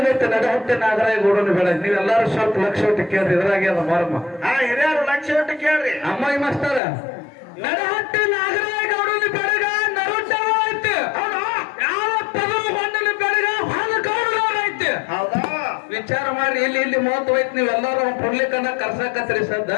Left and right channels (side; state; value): right; drops out; at 6.8 s